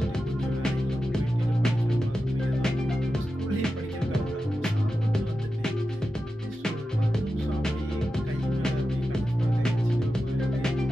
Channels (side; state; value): both; normal; correlation 0.92